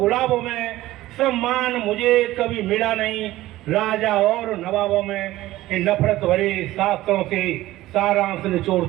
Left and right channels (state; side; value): quieter; left; 16.3 dB